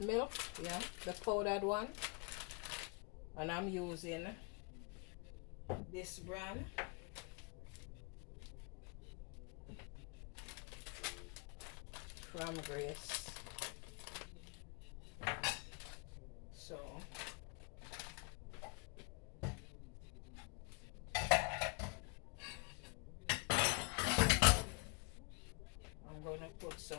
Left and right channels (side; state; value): right; quieter; 32.4 dB